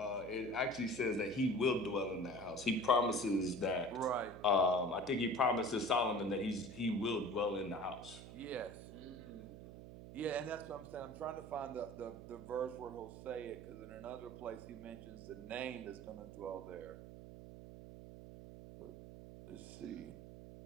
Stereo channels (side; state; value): right; noise; hum, 13 dB below the sound